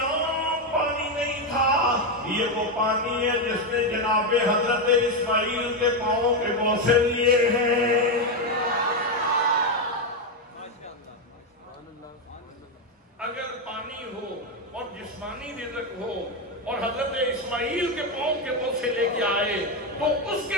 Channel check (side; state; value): both; normal; correlation 0.07